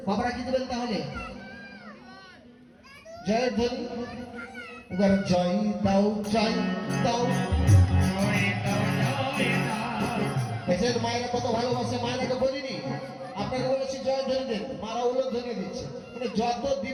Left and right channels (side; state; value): both; identical; correlation 1.00